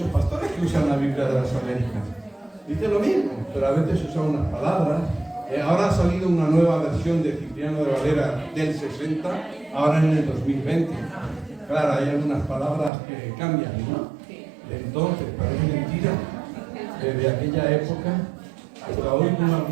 pastores que usan la Biblia de las Américas. Dice lo mismo, pero a veces usan unas palabras. Ahora ha salido una nueva versión de Cipriano de Valera del 60, ahora en el 2020. Claro, hay algunas palabras que cambian, ¿no? Entonces, parece mentira. Desde aquella época hasta hoy, como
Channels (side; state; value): left; drops out; at 12.9 s